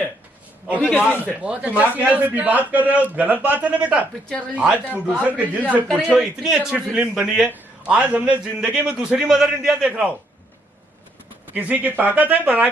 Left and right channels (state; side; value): normal; both; correlation 0.72